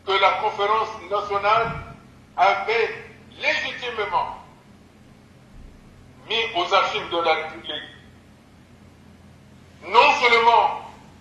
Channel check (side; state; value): both; identical; correlation 1.00